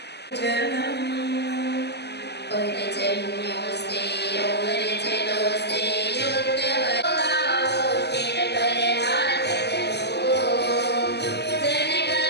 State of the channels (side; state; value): right; late; 0.49 ms